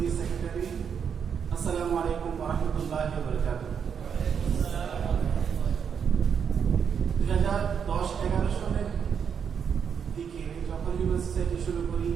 সেক্রেটারি। আসসালামু আলাইকুম ওয়া রাহমাতুল্লাহি ওয়া বারাকাতুহু। 2010-11 সালের দিকে যখন হিউম্যান সোসাইটি শুরু করি,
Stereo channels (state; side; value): quieter; left; 7.2 dB